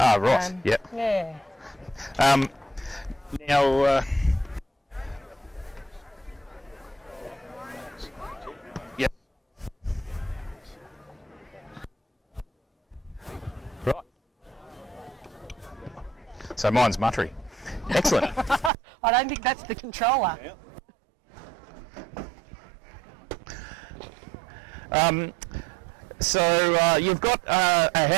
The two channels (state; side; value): drops out; left; at 18.7 s